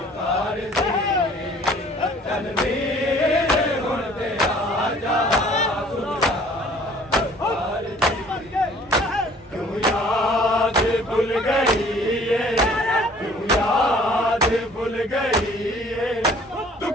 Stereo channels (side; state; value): both; normal; correlation 0.54